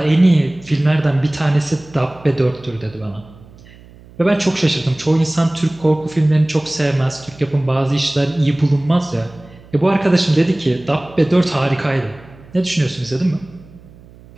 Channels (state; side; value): noise; right; hum, 23 dB below the sound